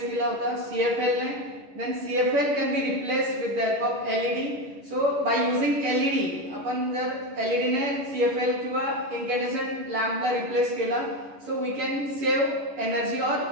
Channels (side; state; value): left; late; 11 ms